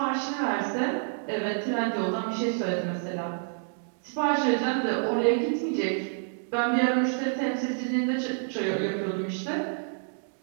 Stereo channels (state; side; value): silent; left; digital silence